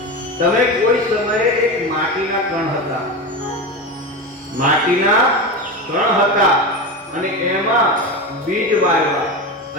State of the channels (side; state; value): both; normal; correlation 0.21